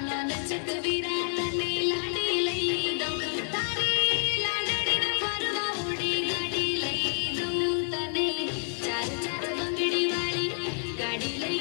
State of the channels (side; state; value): right; silent; 59 dB below the other